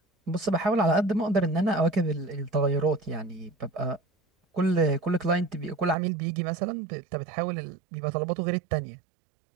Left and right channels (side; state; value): left; drops out; at 6.0 s